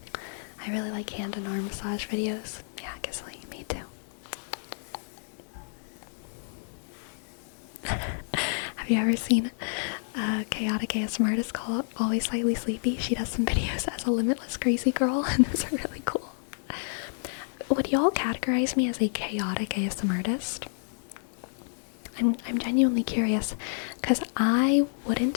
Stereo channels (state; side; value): silent; right; digital silence